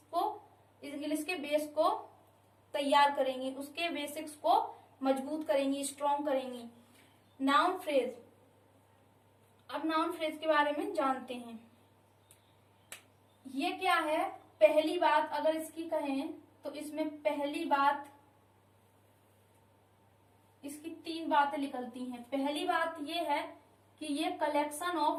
के बेस को तैयार करेंगी, उसके बेसिक्स को मजबूत करेंगी, स्ट्रॉन्ग करेंगी। नाउन फ्रेज, अब नाउन फ्रेज के बारे में जानते हैं। ये क्या है, पहली बात अगर इसकी कहें तो इसमें पहली बात, इसकी 3 बातें निकलती हैं। पहली बात ये है कि ये कलेक्शन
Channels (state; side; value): identical; both; correlation 1.00